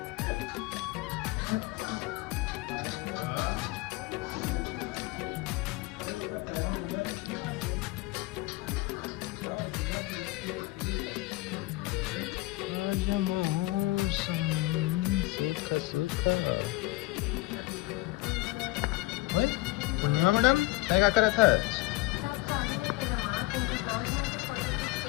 ओए पूर्णिमा मैडम काय करत आहात?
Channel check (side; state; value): right; quieter; 19.9 dB